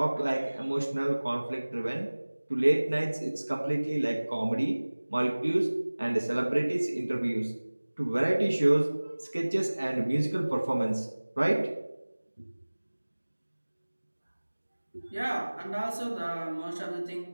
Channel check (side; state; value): both; inverted; correlation -1.00